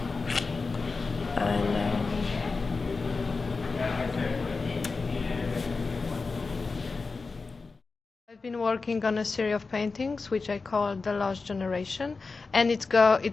I know. I've been working on a series of paintings which I call The Lost Generation, and it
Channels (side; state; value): right; quieter; 4.2 dB